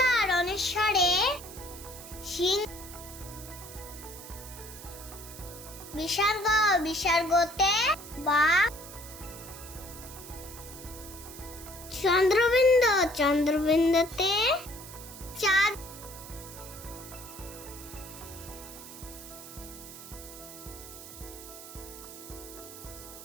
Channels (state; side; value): noise; right; hiss, 14 dB below the sound